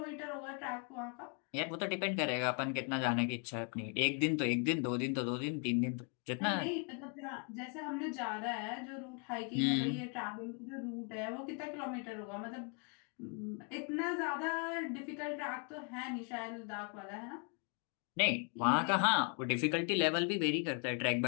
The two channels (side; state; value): right; quieter; 38.6 dB